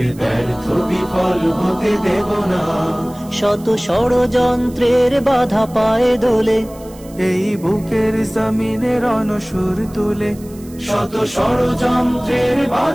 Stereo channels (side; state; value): right; noise; hiss, 23 dB below the sound